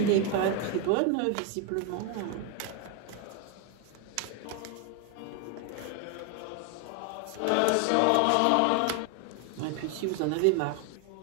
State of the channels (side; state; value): both; different; correlation 0.01